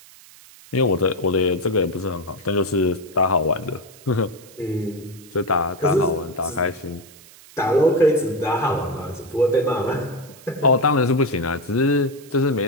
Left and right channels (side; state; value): right; noise; hiss, 22 dB below the sound